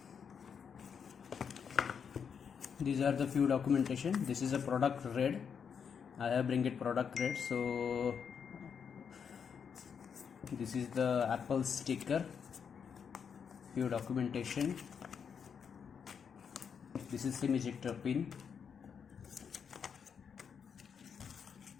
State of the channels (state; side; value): quieter; right; 6.9 dB